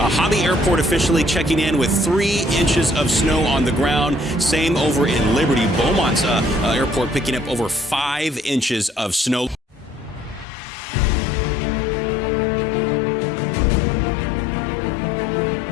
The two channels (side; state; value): right; drops out; at 10.5 s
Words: Hobby Airport officially checking in with 3 inches of snow on the ground. Same over in Liberty. Beaumont's airport picking up over 5 inches of snow.